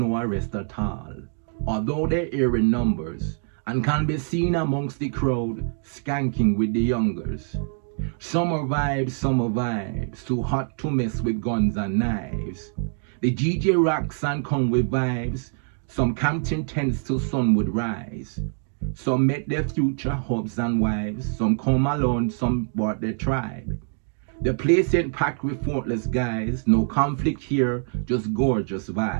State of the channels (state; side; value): silent; left; digital silence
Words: arrest at all. although they're here in numbers, and can be seen amongst the crowd, skanking with the youngers. Summer vibes, too hot to mess with guns and knives. The GJ rocks and come with vibes, some camped in tents till sun would rise. Some met their future hubs and wives, some come alone, some brought their tribe. The place ain't packed with thoughtless guys, no conflict here, just gorgeous